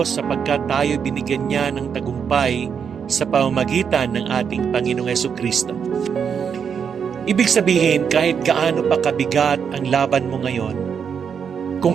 sapagkat tayo binigyan niya ng tagumpay sa pamamagitan ng ating Panginoong Hesukristo. Ibig sabihin, kahit gaano pa kabigat ang laban mo ngayon, kung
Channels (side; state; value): left; quieter; 7.0 dB